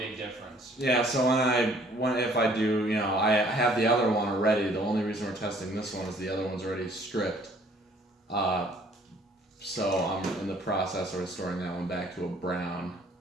big difference. Yeah, so if I do, you know, I have the other one already. The only reason we're testing this one is the other one's already stripped. So I'm in the process of restoring that one back to a brown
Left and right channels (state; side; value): normal; both; correlation 0.58